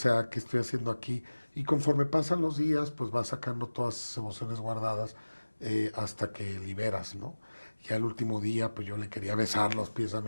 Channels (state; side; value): inverted; both; correlation -1.00